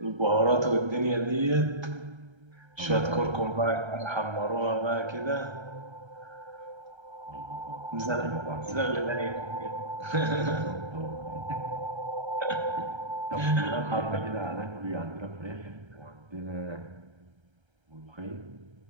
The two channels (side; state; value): left; late; 1.3 ms